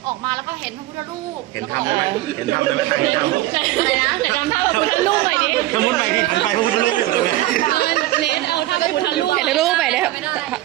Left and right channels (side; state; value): left; quieter; 16.6 dB